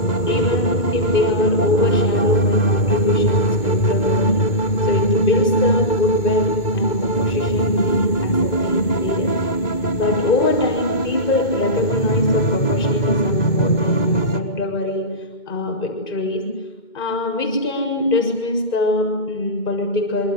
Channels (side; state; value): right; late; 2.2 ms